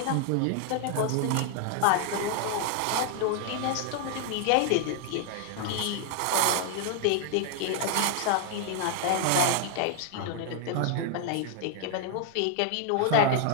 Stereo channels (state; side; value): different; both; correlation 0.00